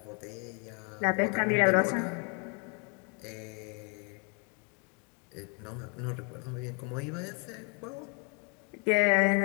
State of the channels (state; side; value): quieter; right; 36.3 dB